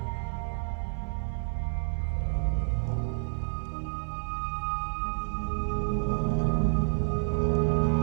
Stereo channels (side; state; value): left; silent; digital silence